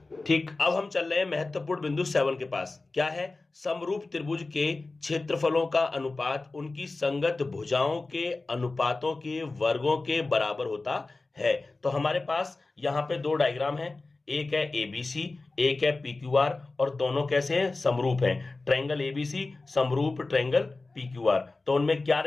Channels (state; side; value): quieter; right; 3.4 dB